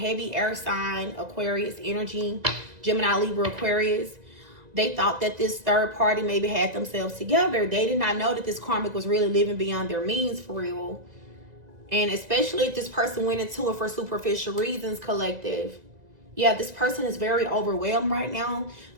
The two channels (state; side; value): late; left; 2.0 ms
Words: air sign, Aquarius energy, Gemini, Libra, Aquarius. They thought that this third party maybe had themselves together. They did not know that this karmic was really living beyond their means for real. And especially if this person went into it for superficial reasons, collective. Yeah, this person is very overwhelmed right now.